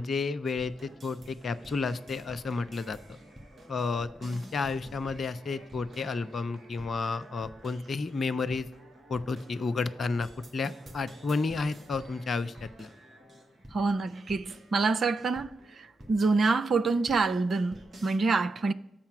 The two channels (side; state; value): both; normal; correlation 0.82